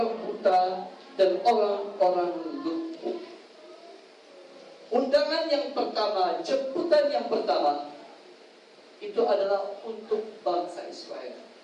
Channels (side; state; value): both; identical; correlation 1.00